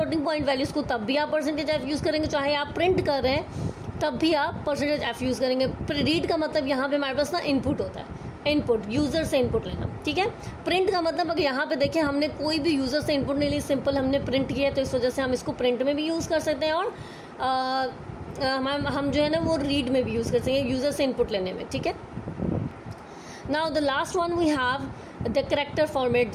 पॉइंट वैल्यूज़ को तब भी आप परसेंटेज एफ यूज़ करेंगे, चाहे आप प्रिंट कर रहे हैं तब भी आप परसेंटेज एफ यूज़ करेंगे। रीड का मतलब यहाँ पे हमारे पास ना इनपुट होता है, इनपुट यूज़र से इनपुट लेना, ठीक है। प्रिंट का मतलब अगर यहाँ पे देखें हमने कोई भी यूज़र से इनपुट नहीं ली, सिंपल हमने प्रिंट किया, तो इस वजह से हम इसको प्रिंट में भी यूज़ कर सकते हैं और हम जो है ना वो रीड में भी यूज़ कर सकते हैं यूज़र से इनपुट लेने में, ठीक है। Now the last one we have the character format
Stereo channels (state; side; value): identical; both; correlation 1.00